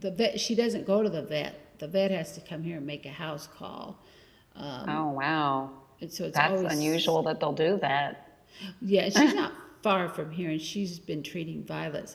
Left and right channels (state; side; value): identical; both; correlation 1.00